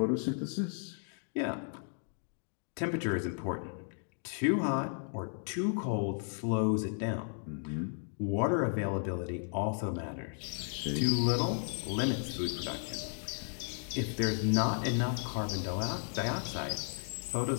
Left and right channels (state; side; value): silent; right; 55 dB below the other